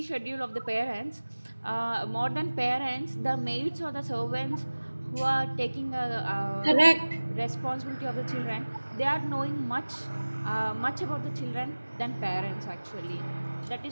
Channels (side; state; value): both; inverted; correlation -1.00